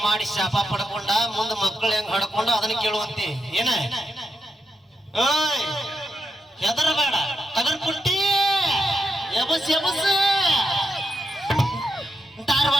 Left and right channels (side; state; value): both; normal; correlation 0.84